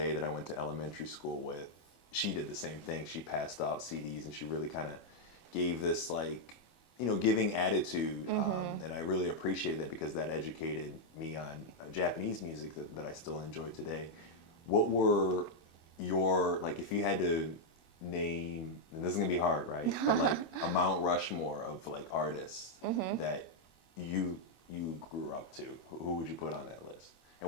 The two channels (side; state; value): right; late; 25 ms